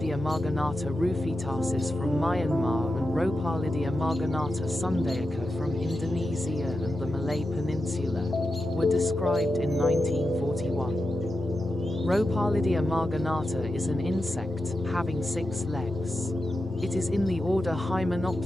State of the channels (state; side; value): normal; both; correlation 0.90